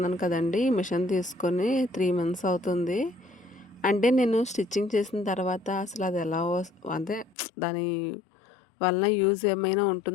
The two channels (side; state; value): right; drops out; at 7.4 s